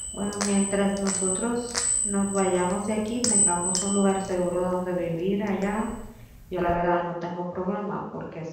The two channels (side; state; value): both; identical; correlation 1.00